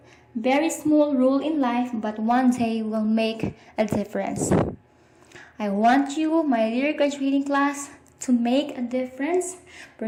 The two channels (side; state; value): both; identical; correlation 1.00